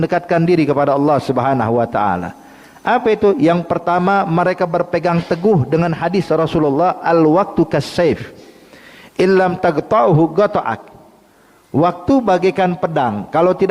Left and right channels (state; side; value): identical; both; correlation 1.00